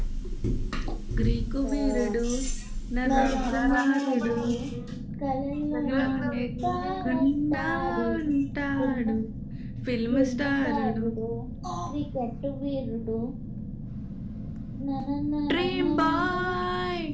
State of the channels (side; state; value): both; identical; correlation 1.00